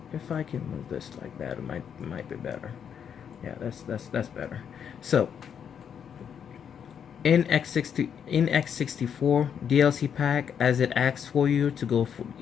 If I can move this like that, it might be better. Yeah, that's better. So in x64 DLC pack, as it asks for you to go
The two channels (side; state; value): right; quieter; 7.9 dB